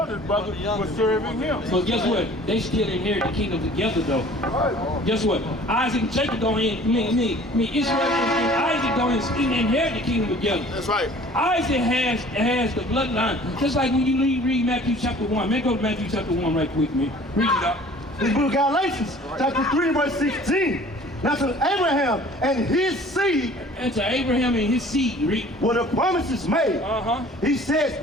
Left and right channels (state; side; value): normal; both; correlation 0.49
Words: brother was serving him. But guess what? They still inherit the kingdom together though. Guess what? Isaac and Jacob don't Israel and Isaac don't inherit the kingdom together. That's right. Isaac has the bloodline. Just like when you read Matthew chapter 1. Man, go to Matthew chapter 1 right quick, man. Read it out. The book of Galatians, chapter 3, verse 16. Now to Abraham and his seed. And to Abraham and his seed, read. Were the promises made. He says